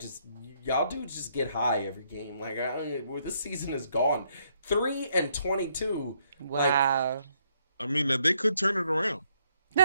y'all dudes just get high every game. Like this season is gone. 3-22. Wow. I mean, they could turn it around.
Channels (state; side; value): inverted; both; correlation -0.72